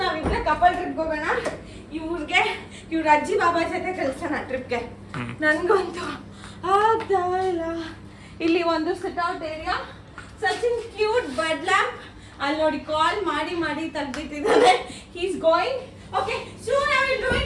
ನಾವಿಬ್ರೆ ಕಪಲ್ ಟ್ರಿಪ್ ಹೋಗೋಣ. ಇವ್ರ ಅಜ್ಜಿ ಬಾಬಾ ಜೊತೆ ಕಳ್ಸೋಣ ಟ್ರಿಪ್ಗೆ. ನನ್ಗಂತೂ ಆಗ್ತಾ ಇಲ್ಲ. ಇಲ್ಲಿ ಒಂದು sit out area, such an cute bed lamp. ಅಲ್ಲಿ ನೋಡಿ ಕಾಲ್ ಮಾಡಿ ತೆಗ್ದಿಟ್ಟಿದ್ದಾನೆ. He's going. Okay, soon I will do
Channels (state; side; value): identical; both; correlation 1.00